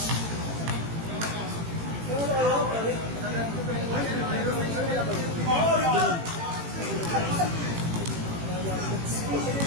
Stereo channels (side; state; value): left; late; 18 ms